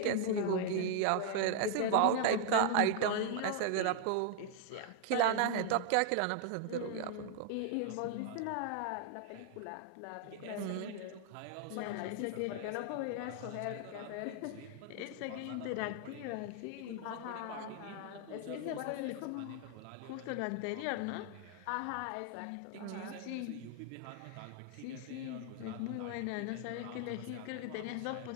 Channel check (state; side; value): different; both; correlation 0.00